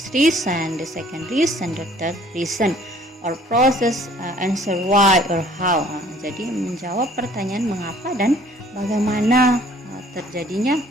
reason, the second reason, the third reason, or process, answer why or how. Jadi menjawab pertanyaan mengapa dan bagaimana terjadinya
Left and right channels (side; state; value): both; normal; correlation 0.56